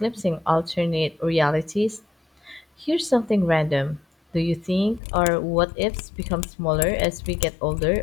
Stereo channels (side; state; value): right; drops out; at 5.0 s